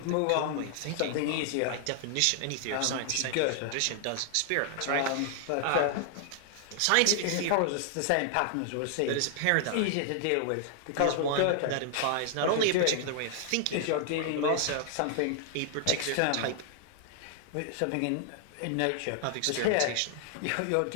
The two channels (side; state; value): both; different; correlation 0.00